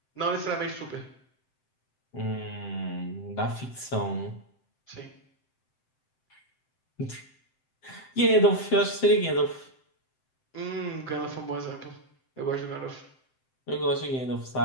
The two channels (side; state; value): right; late; 7.7 ms